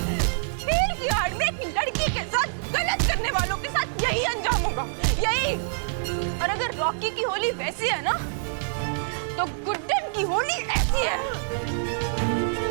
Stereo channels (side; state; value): left; silent; digital silence